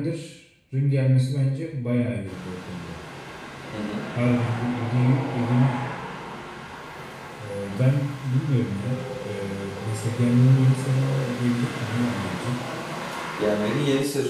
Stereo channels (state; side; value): identical; both; correlation 1.00